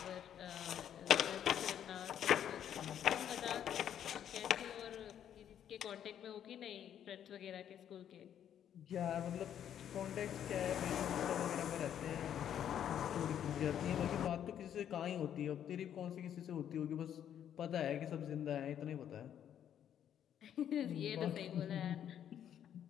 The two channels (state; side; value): quieter; right; 9.8 dB